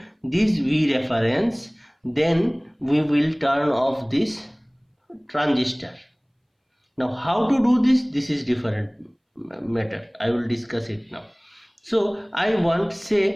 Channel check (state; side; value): identical; both; correlation 1.00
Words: this V reference, then we will turn off this transistor. Now how to do this? This is different matter. I will discuss it now. So I want,